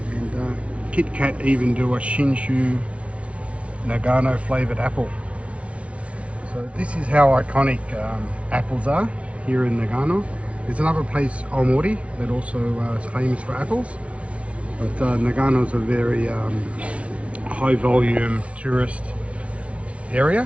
And KitKat even do a Shinshu Nagano flavored apple. So this is how iconic apples are here in Nagano. There's another place, Omori, that also is famous for apples. But Nagano is a very high volume tourist area.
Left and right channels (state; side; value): late; left; 0.062 ms